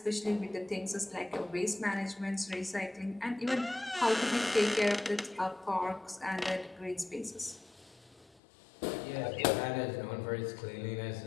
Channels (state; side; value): drops out; right; at 8.4 s